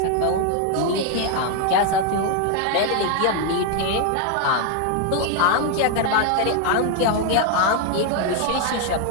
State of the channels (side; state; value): both; different; correlation 0.00